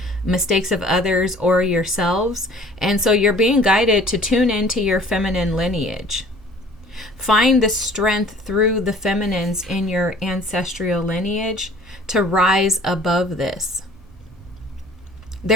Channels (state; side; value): normal; both; correlation 0.51